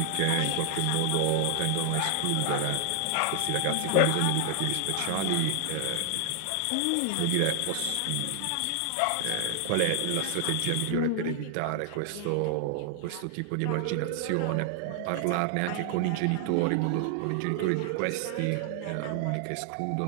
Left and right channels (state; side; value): different; both; correlation 0.00